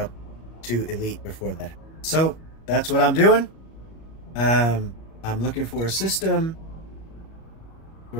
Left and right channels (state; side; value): late; right; 37 ms